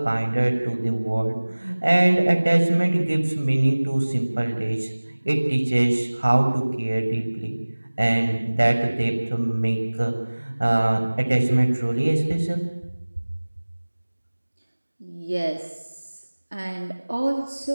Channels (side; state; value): both; inverted; correlation -1.00